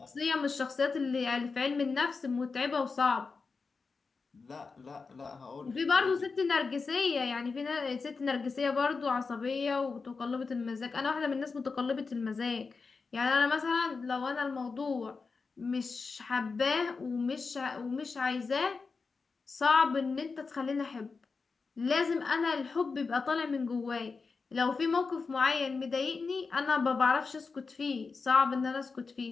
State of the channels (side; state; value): right; quieter; 4.6 dB